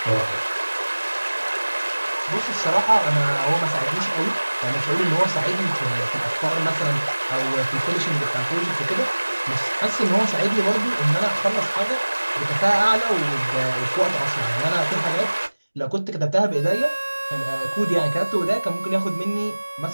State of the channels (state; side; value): inverted; both; correlation -1.00